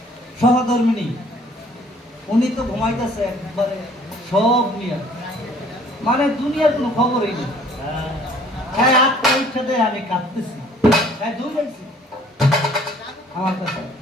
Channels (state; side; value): normal; both; correlation 0.56